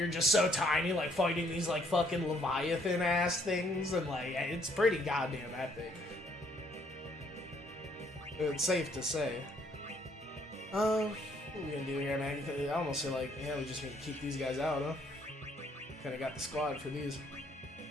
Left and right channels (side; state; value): both; normal; correlation 0.66